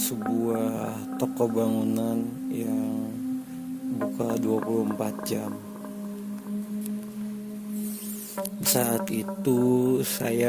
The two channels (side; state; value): both; identical; correlation 1.00